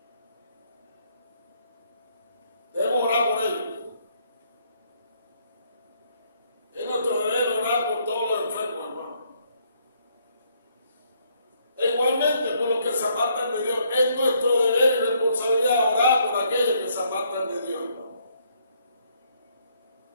Debemos orar por ellos. Es nuestro deber orar por todos los enfermos, hermano. E igualmente por los que se apartan de Dios. Es nuestro deber y responsabilidad orar por aquellos que se apartan de Dios, hermano.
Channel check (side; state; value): both; inverted; correlation -0.70